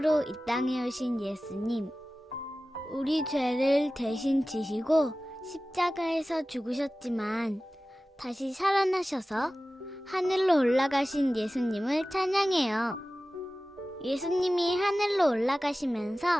이 땅에 오신 예수님, 우리 죄를 대신 지시고 십자가에서 죽으셨지만 다시 살아나셔서 하늘로 올라가신 예수님을 찬양해요. 예수님이 하늘로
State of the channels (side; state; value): both; normal; correlation 0.96